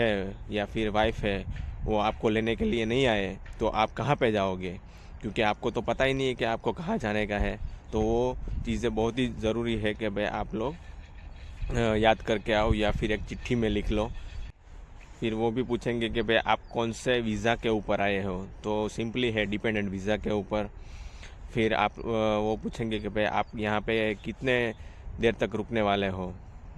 या फिर वाइफ है वो आपको लेने के लिए नहीं आए तो आप कहाँ पे जाओगे, क्योंकि आपको तो पता ही नहीं है कि आपको कहाँ जाने का है। तो वो चीज़ें बहुत ही ज़रूरी है कि भाई आप लोग याद करके आओ या फिर एक चिट्ठी में लिख लो। फिर वो भी पूछेंगे कि भाई आप कौन से वीज़ा के ऊपर आए हो, तो सिंपली है डिपेंडेंट वीज़ा के ऊपर। फिर आप वो पूछेंगे कि भाई आप यहाँ पे कितने देर तक रुकने वाले हो,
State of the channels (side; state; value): both; identical; correlation 1.00